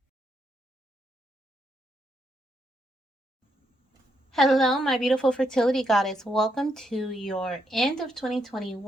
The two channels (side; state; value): both; normal; correlation 0.78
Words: Hello, my beautiful fertility goddess. Welcome to your end of